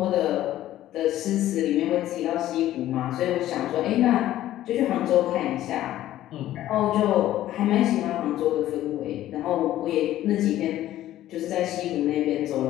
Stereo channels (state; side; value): quieter; right; 13.6 dB